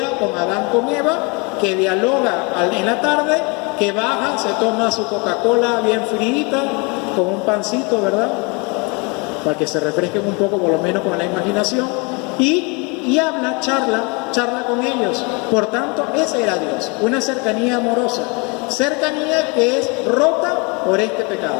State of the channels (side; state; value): right; quieter; 30.4 dB